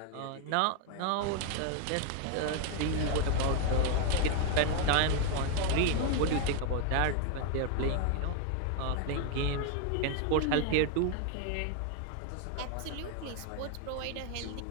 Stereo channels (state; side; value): different; both; correlation 0.01